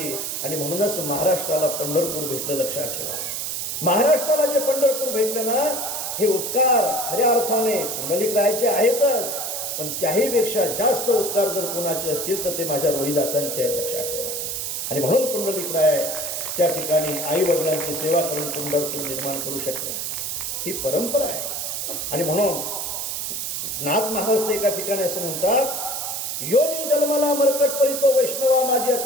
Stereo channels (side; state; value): right; noise; hiss, 3 dB below the sound